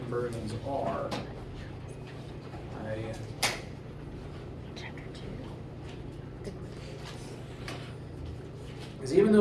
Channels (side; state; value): both; identical; correlation 1.00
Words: conversions are. Because even